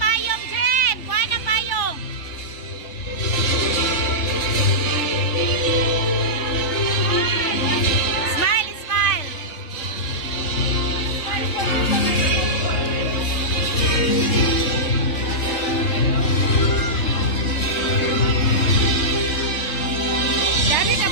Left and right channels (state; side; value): late; right; 3.5 ms